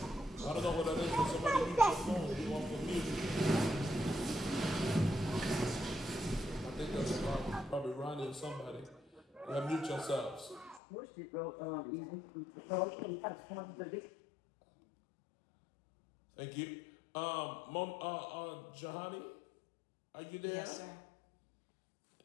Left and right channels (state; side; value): drops out; right; at 10.8 s